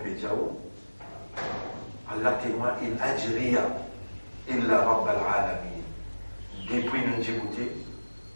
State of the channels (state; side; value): inverted; both; correlation -1.00